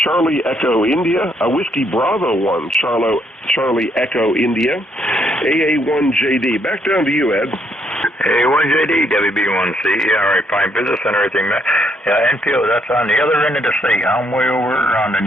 Charlie Echo India. Whiskey Bravo 1, Charlie Echo India. AA1JD. Back down to you, Ed. AA1JD, WB1C. Yeah, all right, fine. Business and everything. Yeah, Enfield, that's on the other end of the state. I'm way over on the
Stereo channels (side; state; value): both; normal; correlation 0.72